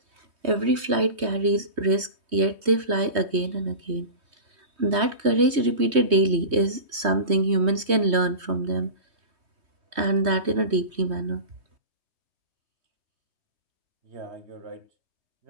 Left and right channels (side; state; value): left; late; 3.2 ms